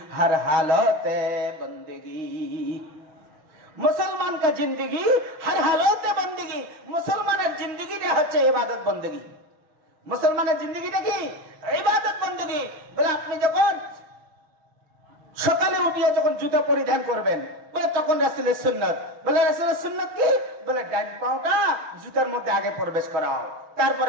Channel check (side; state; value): left; late; 6.4 ms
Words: হর হালতে বন্দেগি, মুসলমান কা জিন্দেগি হর হালতে বন্দেগি। মুসলমানের জিন্দেগিটা হচ্ছে ইবাদত বন্দেগি। মুসলমানের জিন্দেগিটা কি? ইবাদত বন্দেগি। বলে আপনি যখন সকালে উঠিয়ে যখন জুতা পরিধান করবেন, বলে তখন রাসূলের সুন্নাত। বলে রাসূলের সুন্নাত কি? বলে ডান পাটা জুতার মধ্যে আগে প্রবেশ করাও,